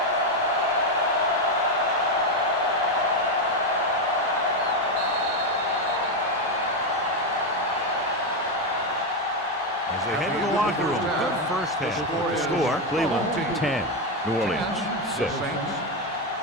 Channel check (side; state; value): both; normal; correlation 0.07